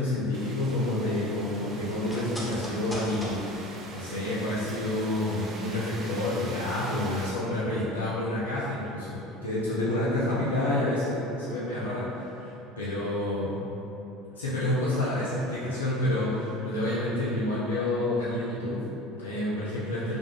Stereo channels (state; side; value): normal; both; correlation 0.36